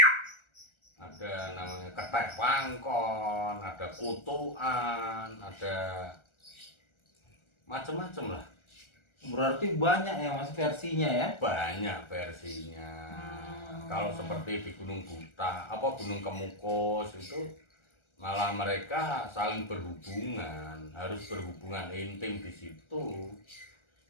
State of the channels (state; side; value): late; right; 1.4 ms